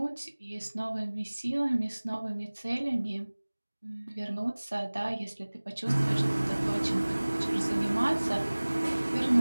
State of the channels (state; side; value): inverted; both; correlation -1.00